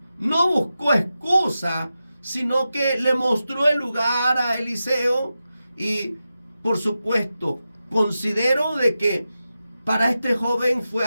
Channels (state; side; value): inverted; both; correlation -0.91